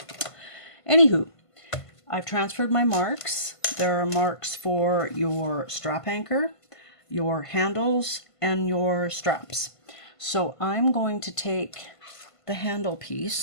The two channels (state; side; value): late; right; 1.5 ms